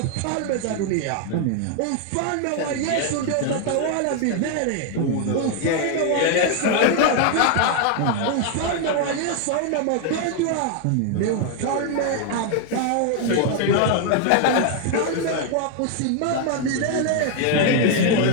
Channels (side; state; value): both; different; correlation 0.00